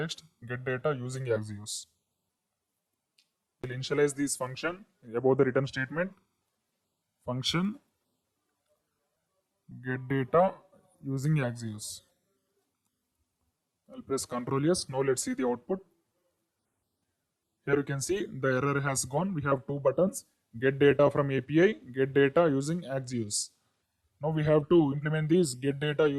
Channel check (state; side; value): identical; both; correlation 1.00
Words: get data using Axios. I will initialize this function above the return statement. Function get data using Axios. I'll press Ctrl S. Now let's see the output. Here you can see the error has gone. We have two buttons, get data from API, get data using Axios. Now we have to implement this get data